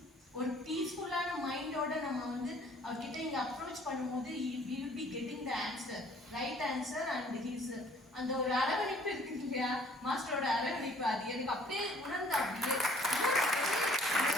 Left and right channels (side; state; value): both; normal; correlation 0.57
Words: மைண்டோட நம்ம வந்து அவர்கிட்ட இங்கே அப்ரோச் பண்ணும்போது he will be getting the answer, right answer. And his அந்த ஒரு அரவணைப்பு இருக்கு இல்லையா, மாஸ்டரோட அரவணைப்பு, அது எனக்கு அப்படியே உணர்ந்த அப்படியே